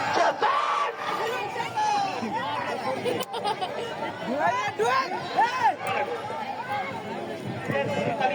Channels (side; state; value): both; identical; correlation 1.00